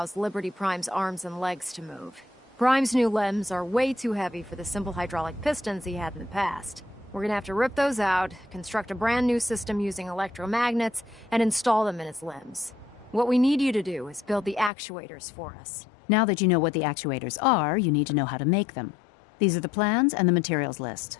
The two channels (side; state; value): right; drops out; at 14.7 s